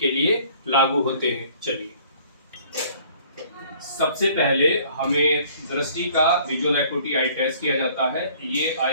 लिए लागू होते हैं। चलिए, सबसे पहले हमें दृष्टि का विजुअल एकुटी आई टेस्ट किया जाता है। ये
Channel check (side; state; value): both; inverted; correlation -0.55